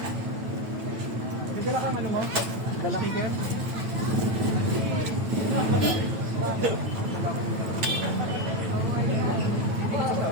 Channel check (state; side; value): late; left; 9.1 ms